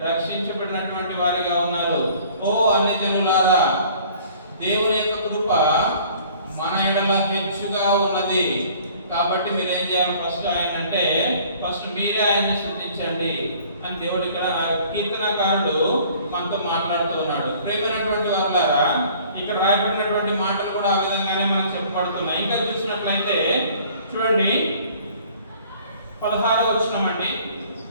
రక్షించబడినటువంటి వారిగా ఉన్నారు. ఓ అన్యజనులారా, దేవుని యొక్క కృప మన ఎడల హెచ్చుగా ఉన్నది. కాబట్టి మీరు ఏం చేయాలి? ఫస్ట్ మీరే ఆయన్ని స్తుతించండి అని దేవుడు ఇక్కడ కీర్తనకారుడు మనతో మాట్లాడుతూ ఉన్నాడు. ప్రియమైనటువంటి వారులారా, ఇక్కడ రాయబడినటువంటి మాటలు కూడా ఆ విధంగానే మనకు చెప్పబడుతున్నాయి. ఇంకా చూసినట్లయితే చూడండి 16వ వచనం అండి.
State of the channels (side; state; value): both; inverted; correlation -0.53